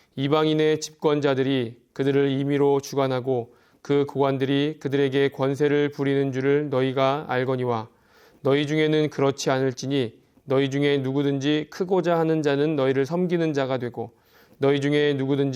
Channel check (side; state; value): both; identical; correlation 1.00